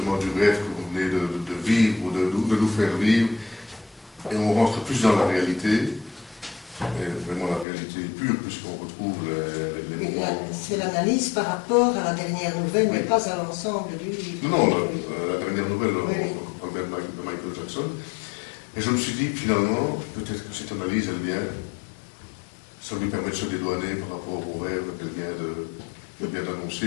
du rêve que vous venez de vivre ou de nous faire vivre, et on rentre plus dans la réalité, et vraiment la réalité pure, puisqu'on retrouve les moments. C'est l'analyse par rapport à la dernière nouvelle, Oui. mais pas à l'ensemble du livre. Non, la dernière nouvelle, Oui. on parle bien de Michael Jackson, et je me suis dit finalement, peut-être que cette analyse, elle vient, ça lui permet de se dédouaner par rapport au rêve qu'elle vient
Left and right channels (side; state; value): right; drops out; at 7.7 s